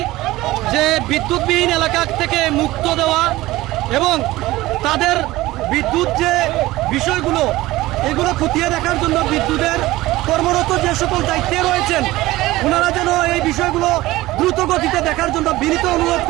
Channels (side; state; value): left; quieter; 17.9 dB